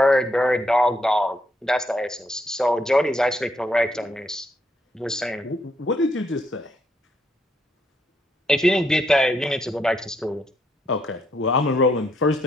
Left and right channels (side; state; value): both; normal; correlation 0.75